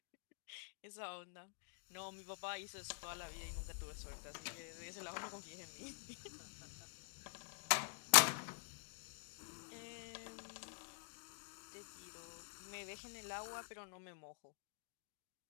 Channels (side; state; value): right; silent; digital silence